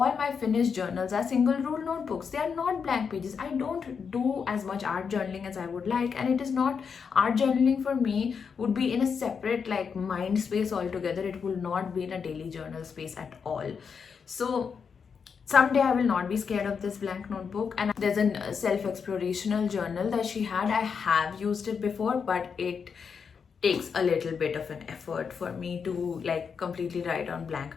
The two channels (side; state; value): right; quieter; 6.2 dB